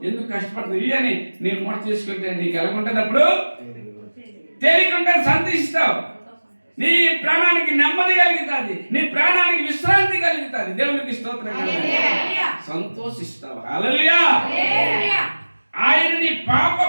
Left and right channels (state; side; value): inverted; both; correlation -1.00